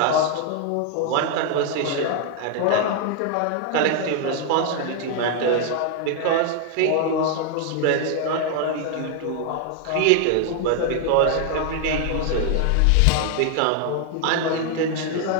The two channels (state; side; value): different; both; correlation 0.00